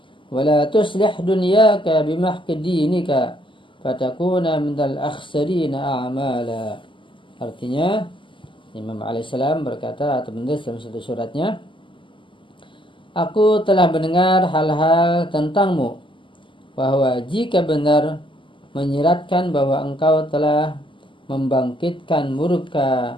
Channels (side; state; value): right; late; 0.25 ms